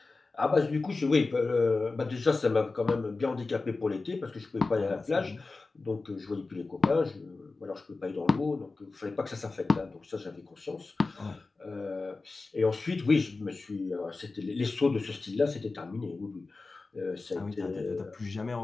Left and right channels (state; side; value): quieter; right; 3.7 dB